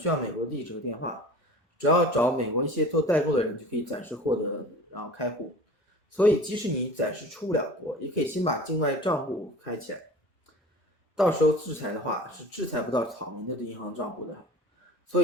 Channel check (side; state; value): both; normal; correlation 0.41